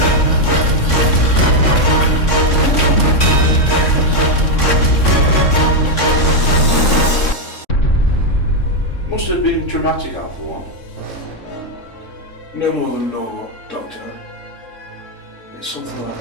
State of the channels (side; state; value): right; late; 3.6 ms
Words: Must have been traumatic, Alpha 1. No more than normal, Doctor. It's something